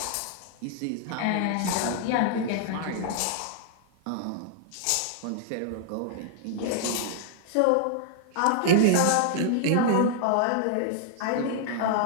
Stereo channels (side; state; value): both; different; correlation -0.01